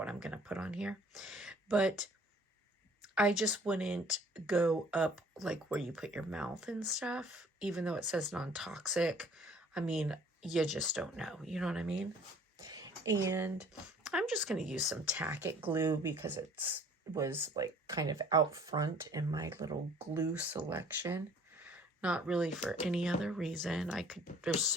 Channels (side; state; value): both; normal; correlation 0.54